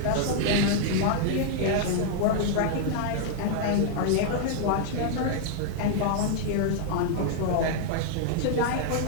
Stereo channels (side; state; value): both; different; correlation -0.01